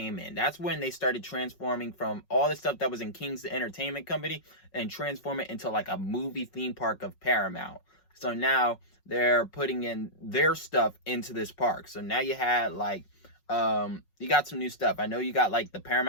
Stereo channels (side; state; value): right; late; 5.5 ms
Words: in. That's when they started transforming from all the stuff that was in King's Entertainment Company and transform it into like a movie theme park of Paramount. So now they're putting in their stuff into this park. So now you had like, you got some new stuff. I know you got like the